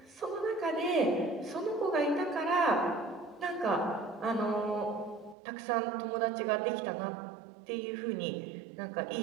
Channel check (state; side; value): drops out; left; at 5.4 s